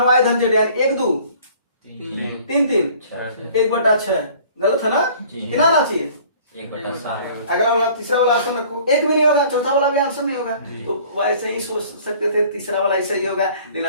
y धन z यानी 1 2 3 3 1/6 गलत है ना, कितना आना चाहिए 1/7। अगला वाला तीसरा वाला आंसर रखो, एक भी नहीं होगा, चौथा वाला भी आंसर नहीं होगा, तो वैसे ही सोच सकते थे तीसरा वाला ऐसा ही होगा, लेकिन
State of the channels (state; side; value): inverted; both; correlation -0.51